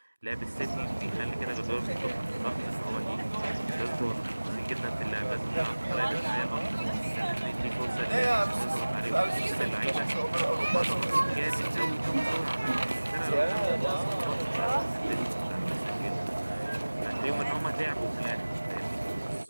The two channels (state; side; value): inverted; both; correlation -1.00